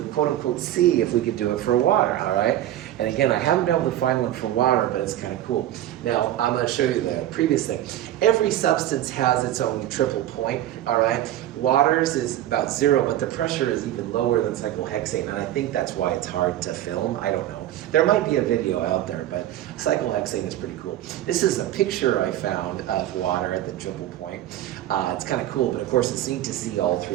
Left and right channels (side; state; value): left; quieter; 13.0 dB